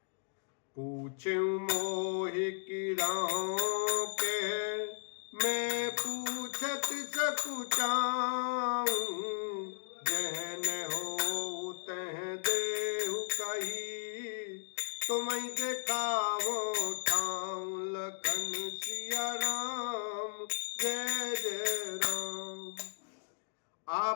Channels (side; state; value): right; silent; digital silence